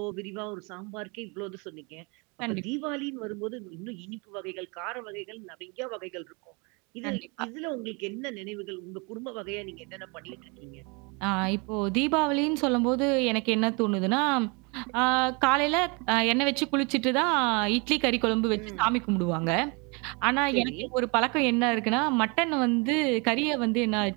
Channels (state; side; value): quieter; left; 30.6 dB